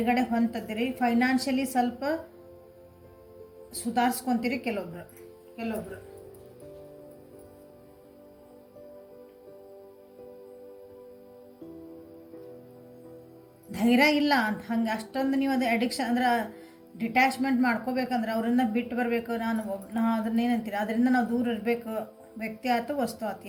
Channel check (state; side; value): identical; both; correlation 1.00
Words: ಹೊಂದಿದ್ದೀರಿ. ಫೈನಾನ್ಷಿಯಲಿ ಸ್ವಲ್ಪ ಸುಧಾರಿಸ್ಕೊತೀರಿ ಕೆಲವೊಬ್ರು. ಧೈರ್ಯ ಇಲ್ಲ ಅಂತ ಹಂಗೆ ಅಷ್ಟೊಂದು ನೀವು ಅದು ಅಡಿಕ್ಷನ್ ಅಂದ್ರೆ ಡಿಟ್ಯಾಚ್ಮೆಂಟ್ ಮಾಡ್ಕೋಬೇಕಂದ್ರೆ ಅವರಿಂದ ಬಿಟ್ಟು ಬರಬೇಕು. ನಾ ಅದನ್ನೇನಂತೀರಿ, ಅದರಿಂದ ನಾವು ದೂರ ಇರಬೇಕು. ವ್ಯಕ್ತಿ ಆಯ್ತು, ವಸ್ತು ಆಯ್ತು,